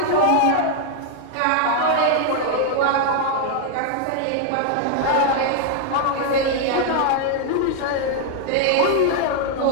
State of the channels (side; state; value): both; different; correlation 0.00